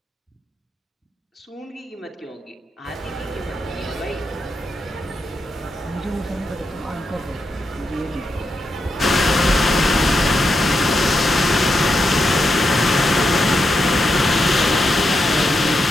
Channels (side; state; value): both; normal; correlation 0.85